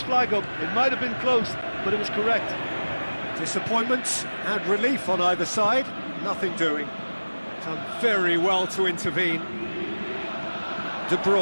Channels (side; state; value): both; inverted; correlation -1.00